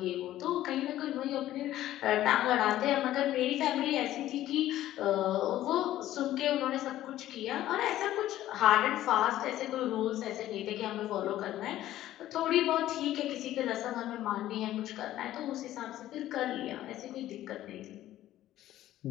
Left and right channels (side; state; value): right; quieter; 13.8 dB